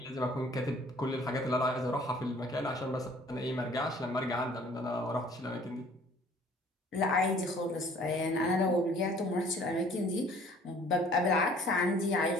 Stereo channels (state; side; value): normal; both; correlation 0.54